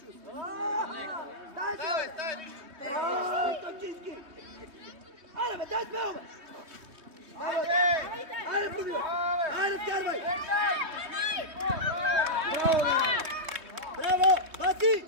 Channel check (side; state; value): left; late; 3.2 ms